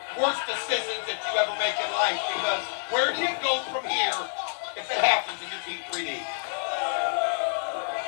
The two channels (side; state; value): right; silent; digital silence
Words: worst decisions that you ever make in life, because where do you go from here if it happens in your Team 3D?